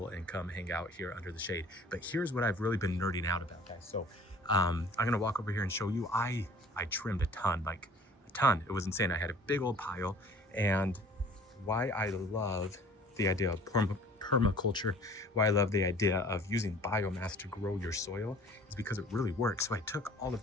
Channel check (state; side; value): normal; both; correlation 0.50